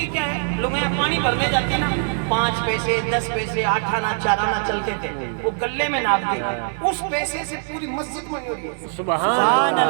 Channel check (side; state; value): left; silent; digital silence